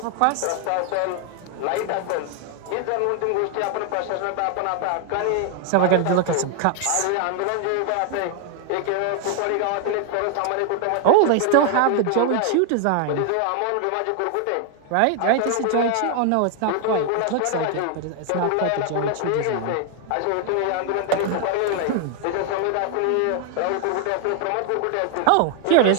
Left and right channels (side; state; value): both; different; correlation 0.00